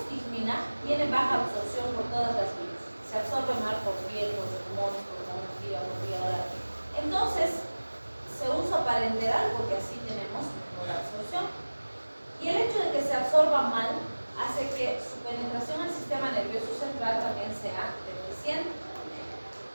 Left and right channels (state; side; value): inverted; both; correlation -1.00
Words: tiene baja absorción por todas las vías. Se absorbe mal por piel, por pulmones, por hemorragia, por vía. Entonces, se usa para enterar porque así tenemos mejor absorción. Y el hecho de que se absorba mal hace que su penetración al sistema nervioso central también sea deficiente.